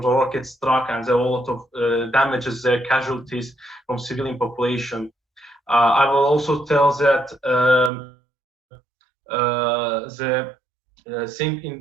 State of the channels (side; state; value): left; drops out; at 7.9 s